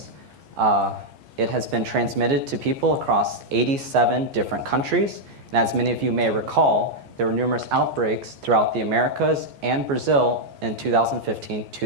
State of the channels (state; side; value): late; left; 14 ms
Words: It has been transmitted to people across 87 different countries. And as many of you may recall, there were numerous outbreaks throughout the Americas and Brazil in